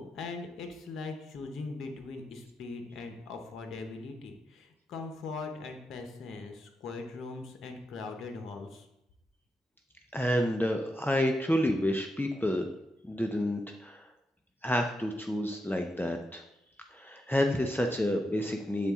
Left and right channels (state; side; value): normal; both; correlation 0.85